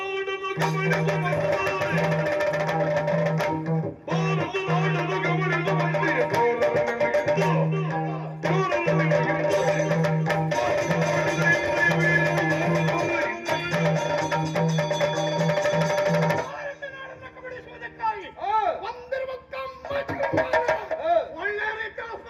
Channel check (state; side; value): identical; both; correlation 1.00